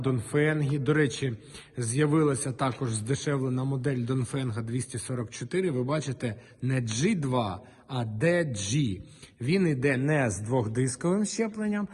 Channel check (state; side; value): identical; both; correlation 1.00